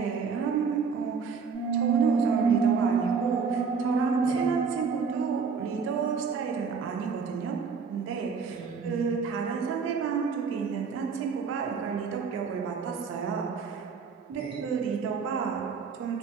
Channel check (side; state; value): left; quieter; 5.7 dB